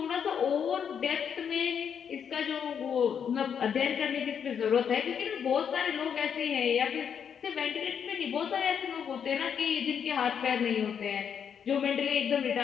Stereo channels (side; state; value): right; quieter; 7.7 dB